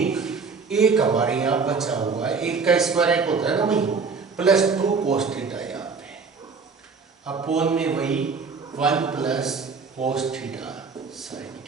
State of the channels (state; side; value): quieter; left; 5.0 dB